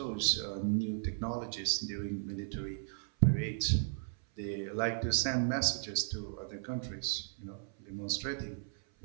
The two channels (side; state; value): left; silent; 54 dB below the other